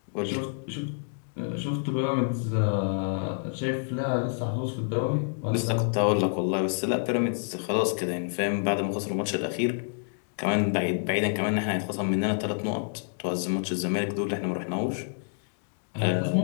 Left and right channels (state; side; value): silent; right; digital silence